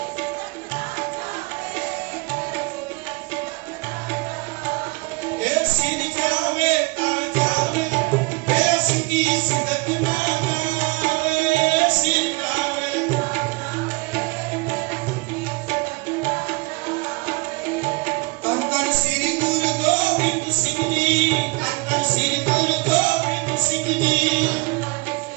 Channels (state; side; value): quieter; left; 25.7 dB